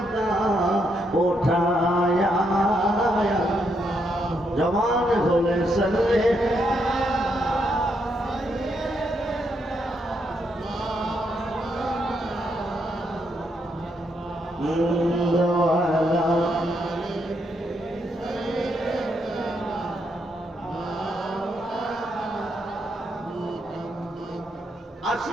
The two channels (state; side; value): normal; both; correlation 0.78